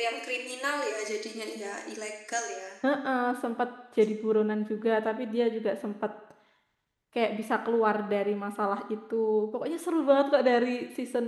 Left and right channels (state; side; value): identical; both; correlation 1.00